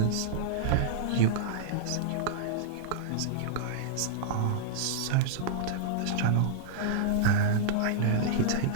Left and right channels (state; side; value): different; both; correlation -0.01